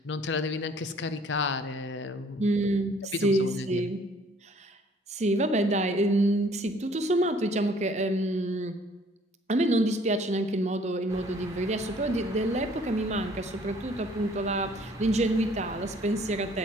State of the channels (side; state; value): both; normal; correlation 0.58